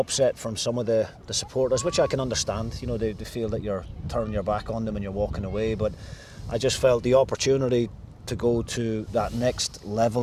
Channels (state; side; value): identical; both; correlation 1.00